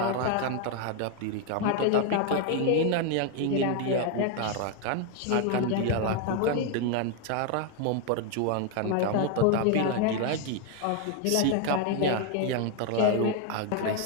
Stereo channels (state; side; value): different; both; correlation 0.01